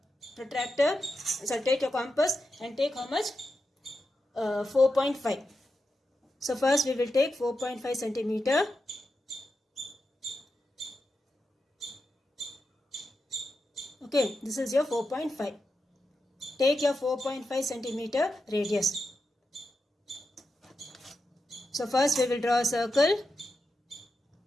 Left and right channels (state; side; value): normal; both; correlation 0.88